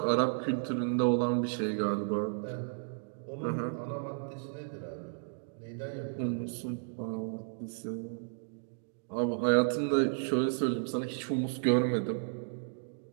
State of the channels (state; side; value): silent; left; digital silence